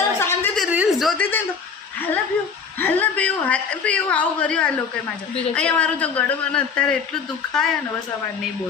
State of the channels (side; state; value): right; quieter; 5.9 dB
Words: શાંતિથી રીલ્સ જોતી હતી ને તો હાલ પીવું આવું કર્યું આ લોકોએ મારે અહીંયા મારું તો ગળું મને અત્યારે એટલું દુખાય ને બસ અમારે નહીં